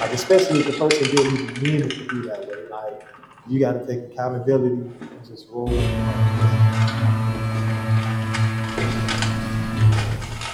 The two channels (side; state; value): both; identical; correlation 1.00